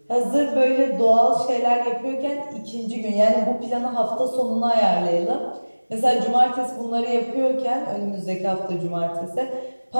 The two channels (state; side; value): inverted; both; correlation -1.00